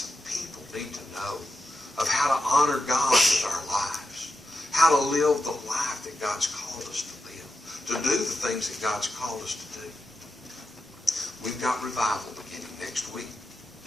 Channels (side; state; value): both; normal; correlation 0.90